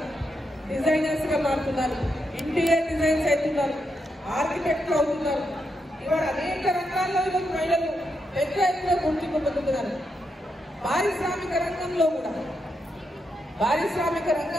డిజైనర్స్ గా మారుతున్నారు, ఇంటీరియర్ డిజైన్స్ అవుతున్నారు, ఆర్కిటెక్ట్లు అవుతున్నారు. ఇవాళ అనేక రంగాల్లో ఈరోజు మహిళలు పెద్ద ఎత్తున గుర్తింపు పొందుతున్నారు. పారిశ్రామిక రంగంలో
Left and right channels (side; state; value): both; normal; correlation 0.83